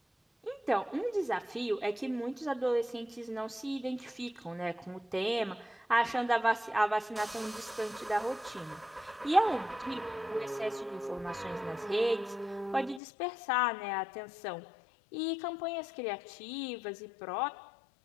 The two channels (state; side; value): drops out; right; at 13.0 s